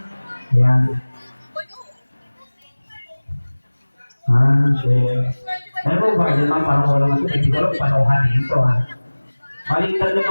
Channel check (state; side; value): inverted; both; correlation -1.00